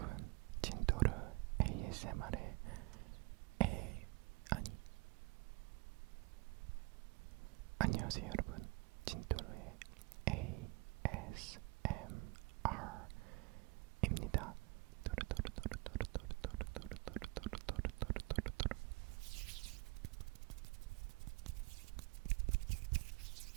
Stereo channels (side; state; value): left; quieter; 25.0 dB